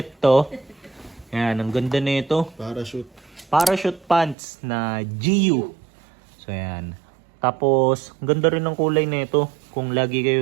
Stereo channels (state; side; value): drops out; left; at 4.4 s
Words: to. Ayan, ang ganda na ito. Parachute. Parachute pants na GU. So, ayan. Tapos, ang ganda rin ng kulay na ito. Kung lagi